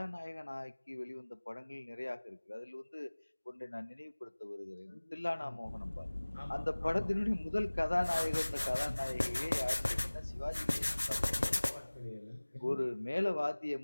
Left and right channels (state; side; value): inverted; both; correlation -1.00